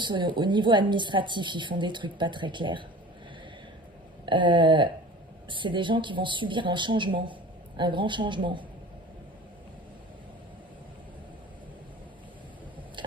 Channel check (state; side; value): normal; both; correlation 0.40